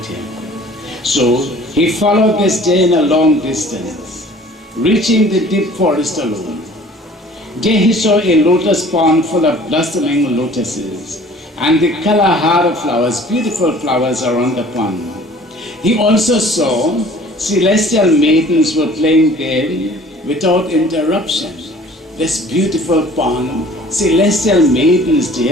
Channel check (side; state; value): both; normal; correlation 0.50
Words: So he followed this Jain a long distance, reaching the deep forest alone. There he saw a lotus pond full of blossoming lotuses and the Kalahara flowers, beautiful flowers around the pond. He also saw celestial maidens were playing there without interruption. This beautiful pond, celestial maidens